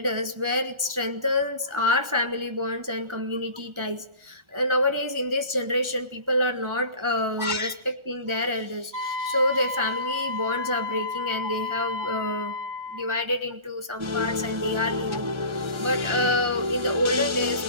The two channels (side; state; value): left; late; 1.4 ms